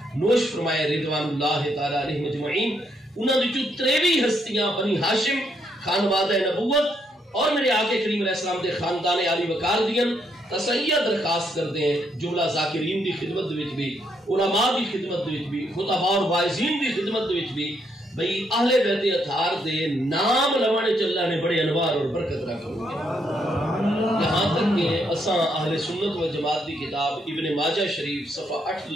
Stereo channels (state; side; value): normal; both; correlation 0.75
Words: نوش فرمائے رضوان اللہ تعالی علیہ مجمعین. انہاں وچوں 23 ہستیاں بنی ہاشم خانوادہ نبوت اور میرے آقا کریم علیہ السلام دے خاندان علی وقار دیاں تسیہ درخواست کرتے ہیں جملہ ذاکرین دی خدمت وچ بھی، علماء دی خدمت وچ بھی، خطباء اور واعظین دی خدمت وچ بھی بھئی اہل بیت اطہار دے نام لوانے چلا نے بڑے انوار اور برکت رکھو گے. یہاں تک کہ اساں اہل سنت و جماعت دی کتاب ابن ماجہ شریف صفحہ 8